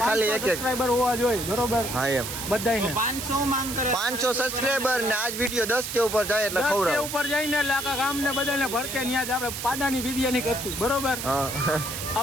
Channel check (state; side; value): noise; right; hiss, 6 dB below the sound